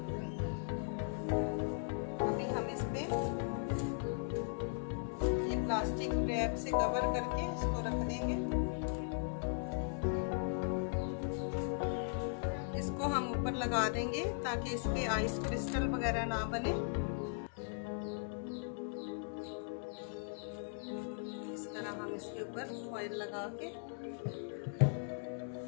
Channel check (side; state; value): right; silent; digital silence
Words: अभी हम इस पे ये प्लास्टिक रैप से कवर करके इसको रख देंगे। हम ऊपर लगा देंगे ताकि इसकी आइस क्रिस्टल वगैरह ना बने। इस तरह हम इसके ऊपर फॉइल लगा के